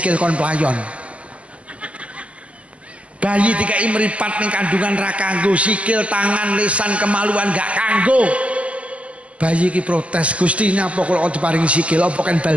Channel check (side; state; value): left; late; 0.062 ms